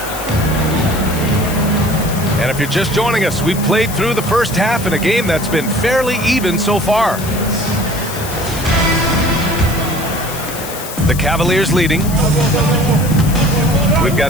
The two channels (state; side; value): noise; left; hiss, 10 dB below the sound